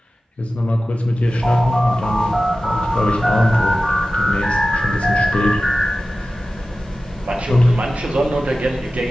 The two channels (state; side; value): normal; both; correlation 0.95